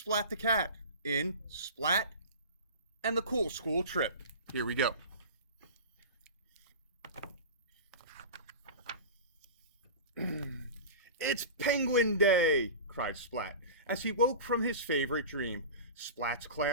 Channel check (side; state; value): both; inverted; correlation -0.31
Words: the cat in Splat and the Cool School Trip. Here we go. It's Penguin Day, cried Splat, as he woke from his favorite dream. Splat's